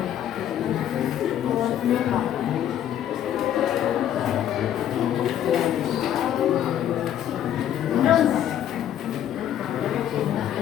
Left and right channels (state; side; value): quieter; right; 10.8 dB